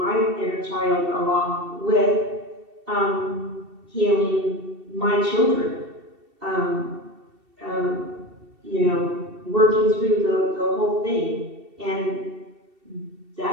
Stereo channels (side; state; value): left; late; 2.7 ms